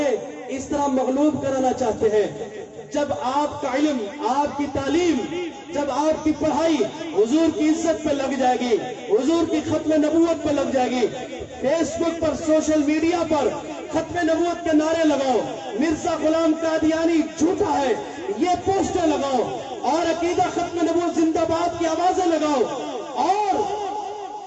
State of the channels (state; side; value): identical; both; correlation 1.00